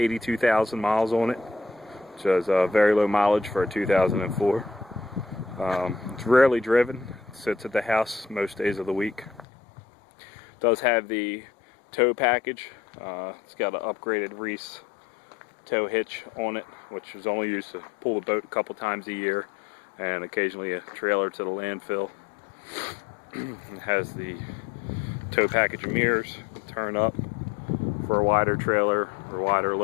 miles on it, which is very low mileage for a 2004. It's rarely driven. It sits at the house most days of the week. It does have the tow package. It's got an upgraded Reese tow hitch on it, which is only used to pull the boat a couple times a year and occasionally a trailer to the landfill. It has the tow package of mirrors that turn up for a wider trailer or wider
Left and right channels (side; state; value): right; drops out; at 9.5 s